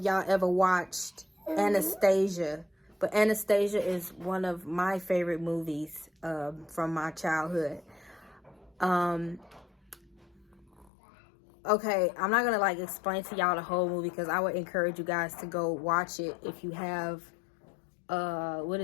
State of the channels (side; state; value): right; drops out; at 10.9 s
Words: y'all ever watched Anastasia, but Anastasia is one of my favorite movies from my childhood. Okay, I'm not gonna like explain to y'all the whole movie because I would encourage you guys to go watch it if you have what